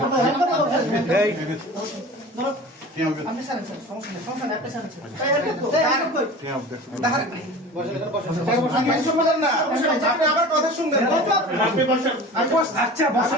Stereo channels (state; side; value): normal; both; correlation 0.37